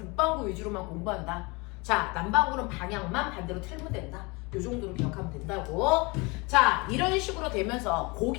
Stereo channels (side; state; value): right; quieter; 26.9 dB